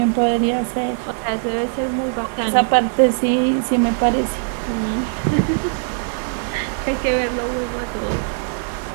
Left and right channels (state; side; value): silent; left; digital silence